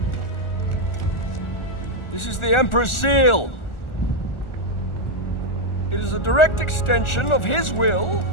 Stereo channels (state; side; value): late; right; 1.4 ms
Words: This is the Emperor's seal. It is a direct extension of his will